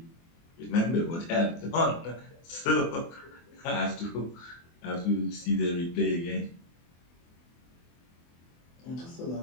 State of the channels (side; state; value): right; late; 24 ms